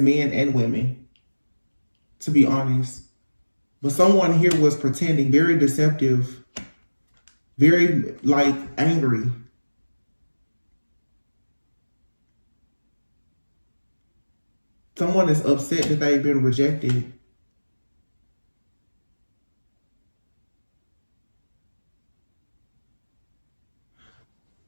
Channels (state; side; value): inverted; both; correlation -1.00